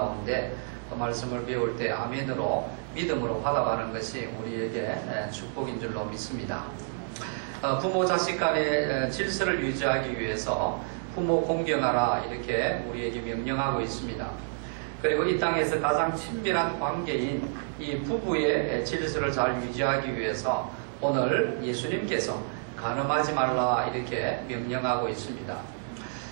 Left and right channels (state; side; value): silent; left; digital silence